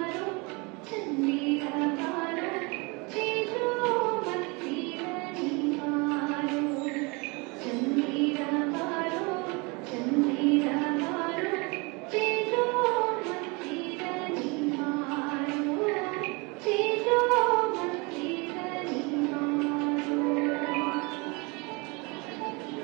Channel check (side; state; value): left; quieter; 28.5 dB